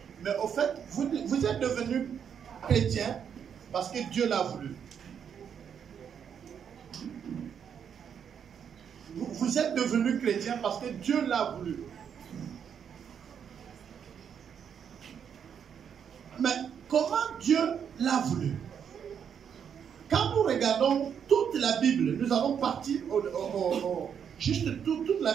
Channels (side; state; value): left; quieter; 7.8 dB